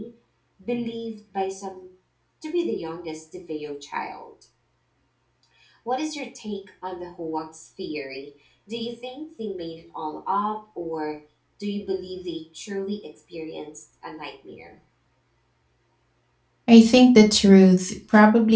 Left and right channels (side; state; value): both; identical; correlation 1.00